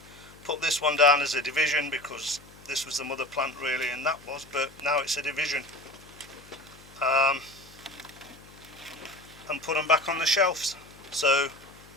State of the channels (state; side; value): noise; left; hum, 23 dB below the sound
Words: Put this one down as a division because this was the mother plant really, and that was, but now it's a division. And put them back on the shelves. So